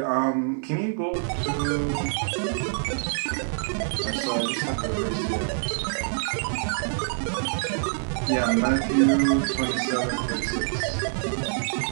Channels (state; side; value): silent; left; digital silence